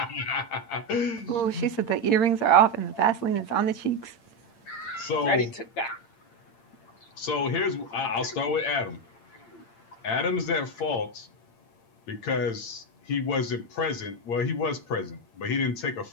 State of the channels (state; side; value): late; right; 8.8 ms